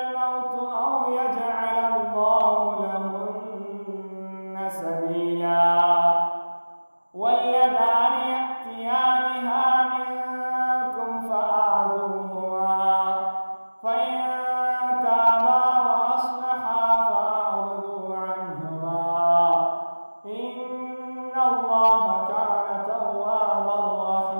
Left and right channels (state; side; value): inverted; both; correlation -1.00